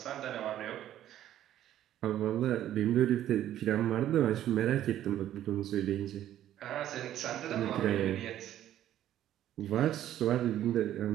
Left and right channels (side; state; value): left; quieter; 12.0 dB